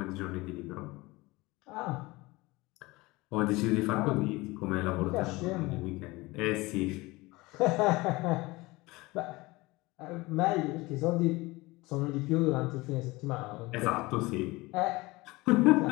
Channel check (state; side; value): quieter; right; 21.9 dB